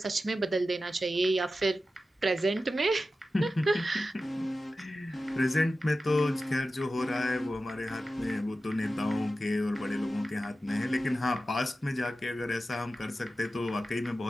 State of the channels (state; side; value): normal; both; correlation 0.93